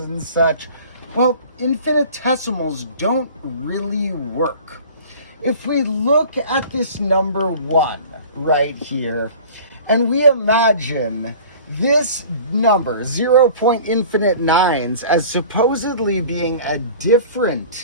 and such, well, infinitesimals don't really work. If we look at this number 1 right here, and we imagine this number, 0.9, as supposedly being a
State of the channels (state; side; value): inverted; both; correlation -0.44